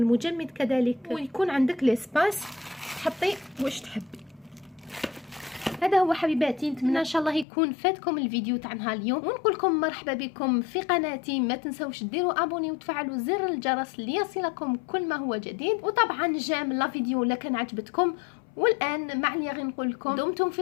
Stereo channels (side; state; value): right; drops out; at 7.5 s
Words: كذلك، ويكون عندك ليسباس تحطي واش تحبي. هذا هو حبيباتي، نتمنى ان شاء الله يكون فاتكم الفيديو تاع نهار اليوم، ونقول لكم مرحبا بكم في قناتي. ما تنسوش ديروا ابوني وتفعلوا زر الجرس ليصلكم كل ما هو جديد. وطبعا جام لا فيديو الا كان عجبتكم. والان مع اللي غير نقول لكم دمتم في